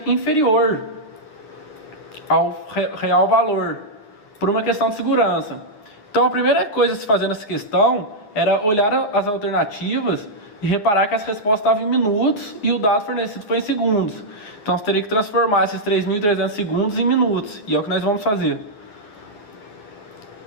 inferior ao real valor, por uma questão de segurança. Então a primeira coisa a se fazer nessa questão era olhar as alternativas e reparar que as respostas estavam em minutos e o dado fornecido foi em segundos. Então você teria que transformar esses 3.300 segundos em minutos, e é o que nós vamos fazer.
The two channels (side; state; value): right; late; 9.5 ms